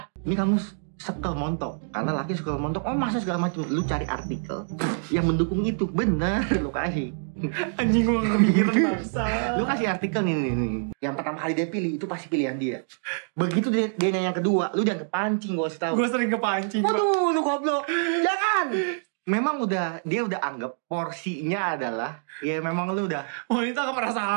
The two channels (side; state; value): left; silent; digital silence